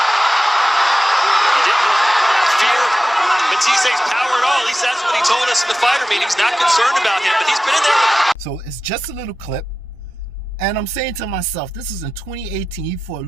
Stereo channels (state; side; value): normal; both; correlation 0.94